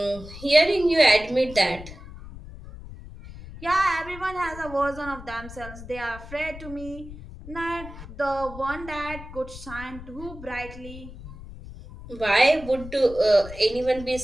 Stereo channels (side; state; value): left; noise; rumble, 14 dB below the sound